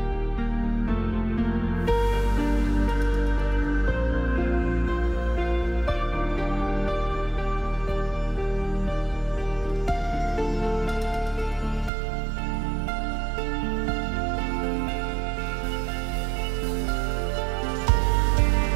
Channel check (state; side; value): drops out; left; at 11.9 s